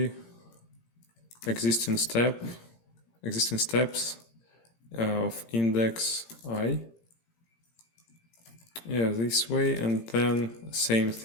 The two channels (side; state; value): right; late; 17 ms